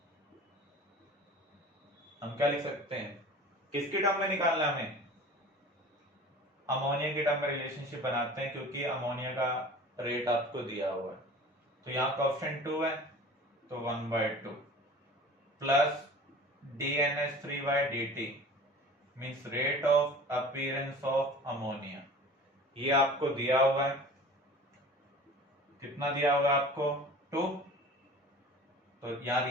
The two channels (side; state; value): both; normal; correlation 0.41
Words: हम क्या लिख सकते हैं? किसके टर्म में निकालना है हमें? अमोनिया के टर्म में रिलेशनशिप बनाते हैं, क्योंकि अमोनिया का रेट आपको दिया हुआ है। तो यहाँ कोएफिशिएंट 2 है, तो 1/2 plus DNH3/dt means rate of appearance of ammonia. ये आपको दिया हुआ है, कितना दिया हुआ है आपको? 2। तो यहाँ